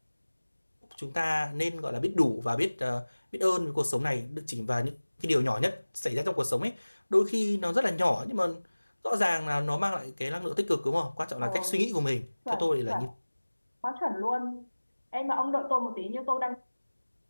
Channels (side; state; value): both; inverted; correlation -1.00